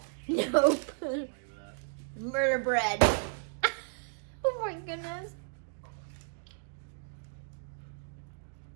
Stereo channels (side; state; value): left; silent; digital silence